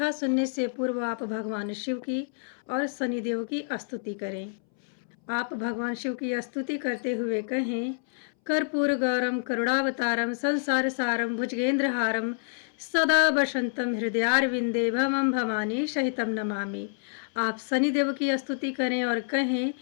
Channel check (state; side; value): silent; right; 60 dB below the other